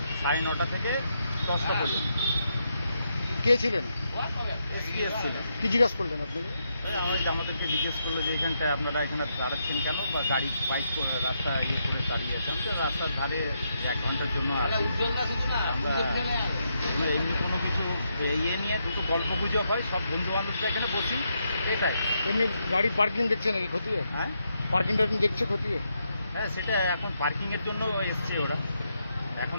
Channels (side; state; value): both; inverted; correlation -0.80